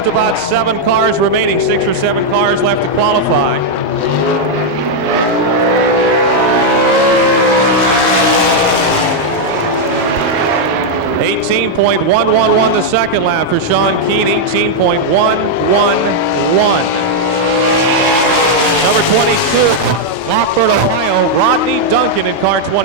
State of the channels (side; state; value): both; normal; correlation -0.01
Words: about 7 cars remaining, 6 or 7 cars left to qualify. $18.111 the second lap for Sean Keane, 18.111. Number 22. Rockford, Ohio, Rodney Duncan in car